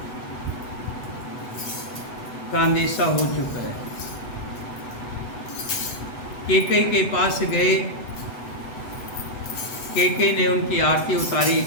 का अंदेशा हो चुका है। कैकेयी के पास गए, कैकेयी ने उनकी आरती उतारी,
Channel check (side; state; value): right; late; 8.0 ms